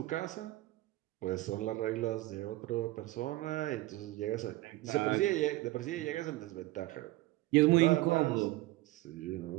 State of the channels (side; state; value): left; quieter; 18.3 dB